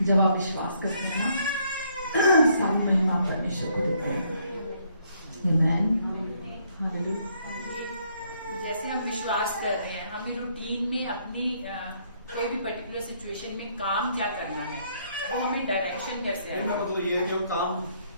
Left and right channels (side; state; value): both; inverted; correlation -0.69